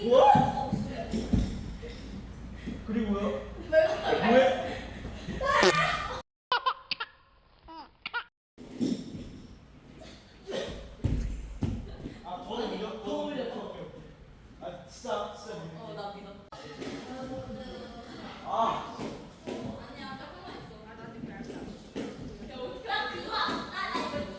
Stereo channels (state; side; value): identical; both; correlation 1.00